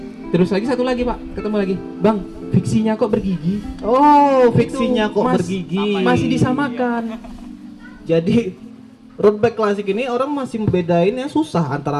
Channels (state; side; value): identical; both; correlation 1.00